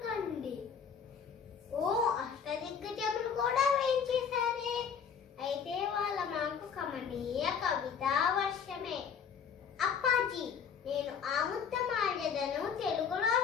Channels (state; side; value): quieter; right; 6.9 dB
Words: కండి. ఓ అష్టదిగ్గజములు కూడా వేయించేశారే. అయితే వాళ్ళ మాకు కమనీయ కవితా వర్షమే. అప్పాజీ, నేను ఆముక్తమాల్యదను తెలుగులో